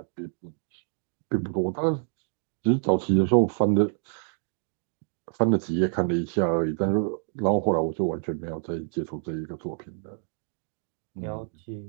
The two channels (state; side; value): silent; left; 60 dB below the other